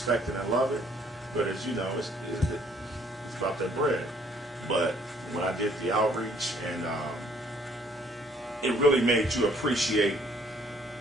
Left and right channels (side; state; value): both; normal; correlation 0.62